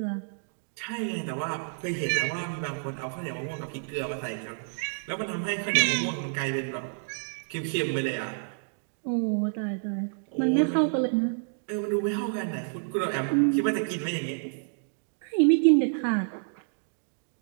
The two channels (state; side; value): silent; left; digital silence